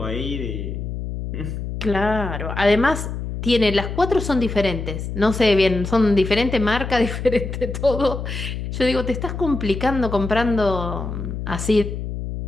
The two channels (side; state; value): left; noise; hum, 5 dB below the sound